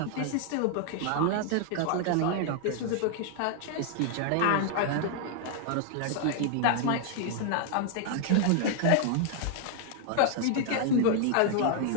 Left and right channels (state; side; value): different; both; correlation 0.00